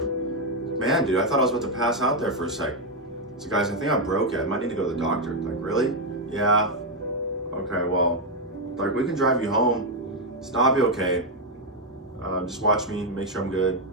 Man, dude, I thought I was about to pass out there for a sec. So guys, I think I broke it. I might need to go to the doctor. Like, really? Yeah. Okay, well, like we can drive you home. It's not be okay. Just watch me, make sure I'm good.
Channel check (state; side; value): normal; both; correlation 0.02